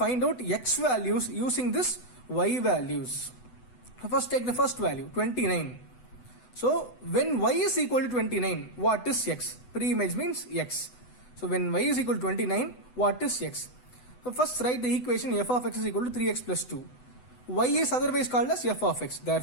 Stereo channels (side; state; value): right; late; 8.0 ms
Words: out x values using this y values. So first take the first value, 29. So, when y is equal to 29, what is x? Pre-image means x. So, when y is equal to 29, what is x? So, first write the equation f of x is equal to 3x plus 2. Y is otherwise called as f of x.